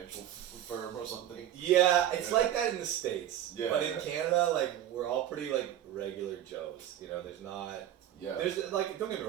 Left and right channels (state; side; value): quieter; left; 11.5 dB